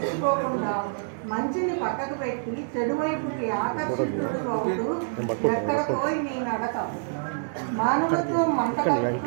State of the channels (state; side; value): silent; left; 61 dB below the other